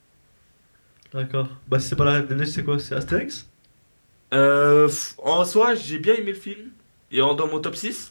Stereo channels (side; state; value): both; inverted; correlation -1.00